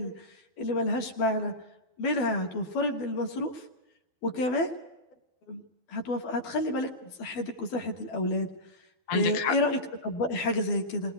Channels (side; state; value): right; late; 12 ms